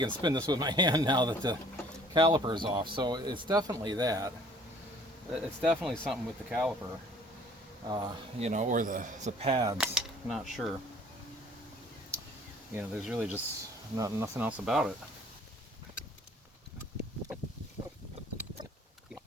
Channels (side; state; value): both; normal; correlation 0.54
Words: spin this with my hand now that the caliper is off. So it's definitely that. It's definitely something with the caliper, you know, or the pads. Not sure. You know, there's really just nothing else about it.